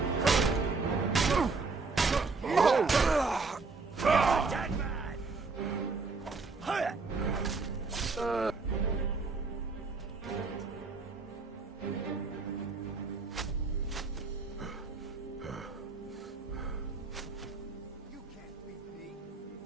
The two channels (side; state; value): left; quieter; 4.2 dB